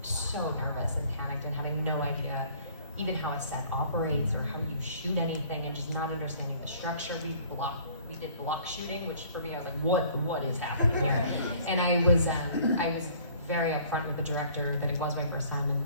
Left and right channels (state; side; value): inverted; both; correlation -0.54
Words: so nervous and panicked and having no idea even how a set operates or how you shoot anything, and just not understanding the structure. We did block shooting, which for me I was like, what is happening here? And I was very upfront with the director that it was my first time, and